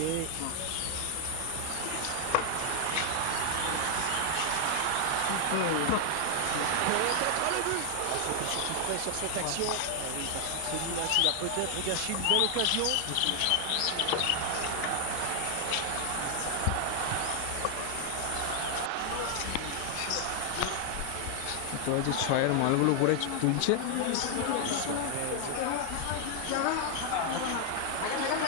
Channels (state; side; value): different; both; correlation 0.00